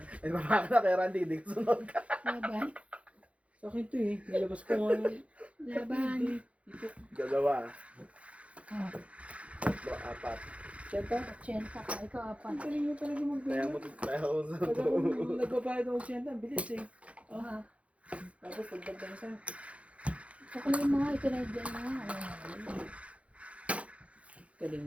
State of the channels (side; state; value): left; late; 0.063 ms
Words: Ay, baka na kay Randy, hindi ko sunod ka. laban, Sa akin to eh. Nilabas ko nga. laban. Dalawa, Oh, tatlo, apat. Siyenta? Chenta ka, ikaw apat. Ang galing mo talaga Kaya mag-bigay. mo kaya ako sa Pag ako nagbabayad ako siyenta, bilis eh. Ah, Tapos pagdagdag sa Kukunin mo nga, ito na dyan na. Ayun. galing